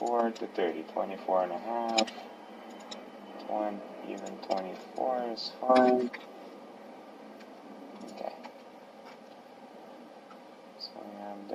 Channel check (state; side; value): identical; both; correlation 1.00